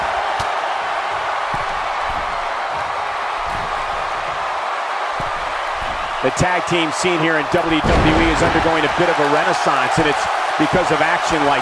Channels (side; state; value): both; identical; correlation 1.00